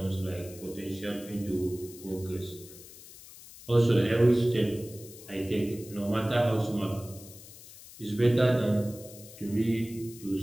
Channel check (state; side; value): noise; left; hiss, 18 dB below the sound